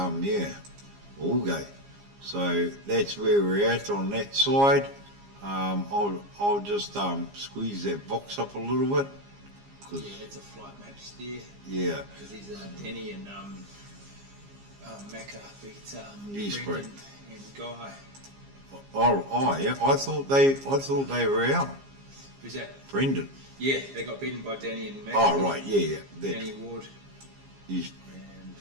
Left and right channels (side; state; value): left; late; 15 ms